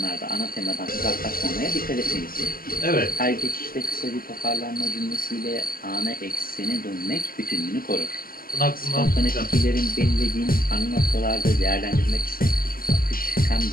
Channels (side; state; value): right; late; 0.42 ms